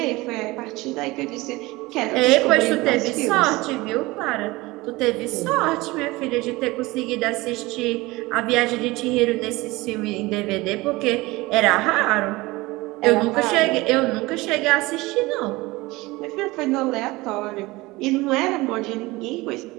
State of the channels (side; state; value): left; quieter; 21.2 dB